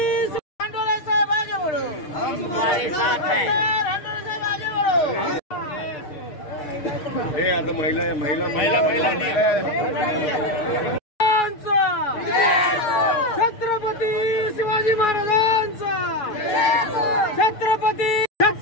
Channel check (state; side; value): late; right; 6.6 ms